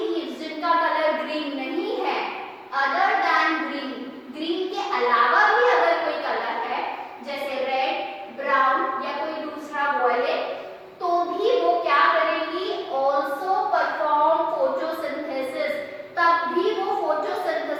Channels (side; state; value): both; identical; correlation 1.00